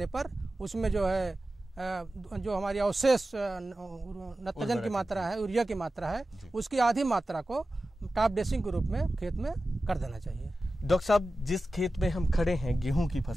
पर उसमें जो है जो हमारी अवशेष नत्रजन की मात्रा है, यूरिया की मात्रा है, उसकी आधी मात्रा को टॉप ड्रेसिंग के रूप में खेत में कर देना चाहिए। डॉक्टर साहब, जिस खेत में हम खड़े हैं गेहूं की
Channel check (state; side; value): normal; both; correlation 0.94